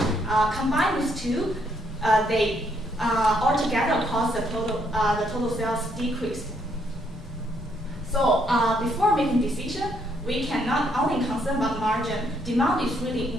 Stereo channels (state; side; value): normal; both; correlation 0.72